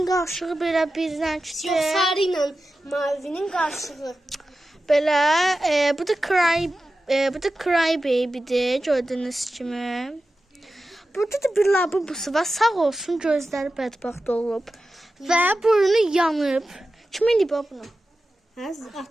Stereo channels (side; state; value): both; normal; correlation 0.93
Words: qarşılığı belə bir renkdir. Yox, sarı ilə mavinin qarşılığı. Belə bu da Cry Baby'dir gördüyünüz kimi. Burada da bir lavabosu var. Sağ olsun gözləri bədbəxt olub və burnu yanıb. Kim eləyib bunu?